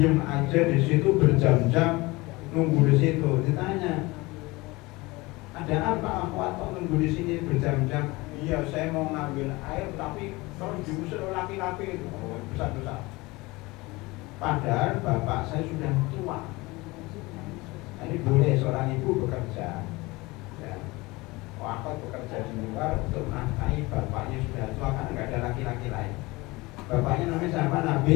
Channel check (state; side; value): quieter; right; 22.6 dB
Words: aja di situ berjam-jam nunggu di situ. Ditanya, ada apa akhwat kok nunggu di sini berjam-jam? Iya, saya mau ngambil air tapi kalau diusir laki-laki itu besar-besar. Padahal bapak saya sudah tua. Ini boleh seorang ibu bekerja. Ya. Aku bekerja di luar untuk menafkahi bapaknya sudah tua karena nggak ada laki-laki lain. Bapaknya namanya siapa?